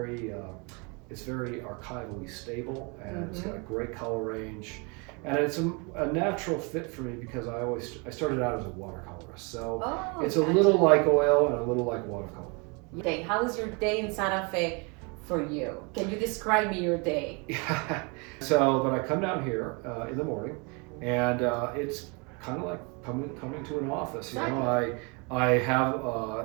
archivally stable, and it's got a great color range. And it's a natural fit for me because I started out as a watercolorist. So it's a little like oil and a little like watercolor. Okay, how is your day in Santa Fe for you? Can you describe me your day? But I come down here in the morning, and it's kind of like coming to an office. You know, I have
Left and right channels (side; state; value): left; quieter; 31.5 dB